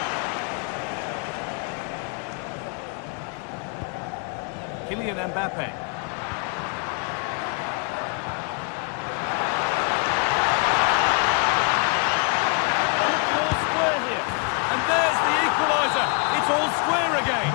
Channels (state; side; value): quieter; right; 35.9 dB